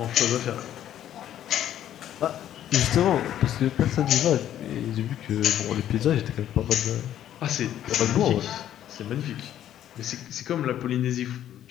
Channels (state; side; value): quieter; right; 11.3 dB